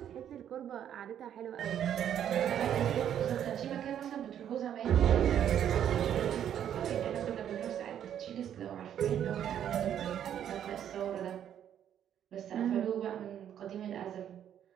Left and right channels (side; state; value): left; quieter; 9.9 dB